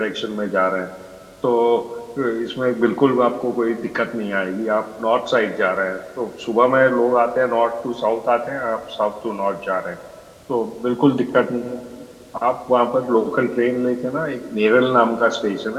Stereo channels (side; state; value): both; identical; correlation 1.00